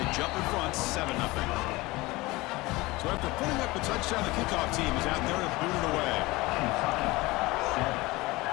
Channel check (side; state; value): right; quieter; 21.3 dB